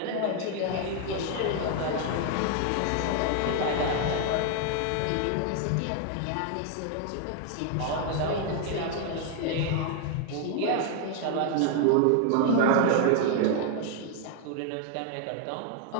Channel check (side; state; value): both; different; correlation 0.00